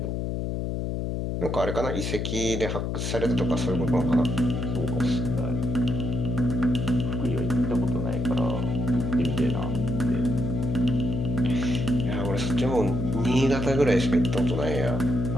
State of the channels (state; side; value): noise; left; hum, 2 dB below the sound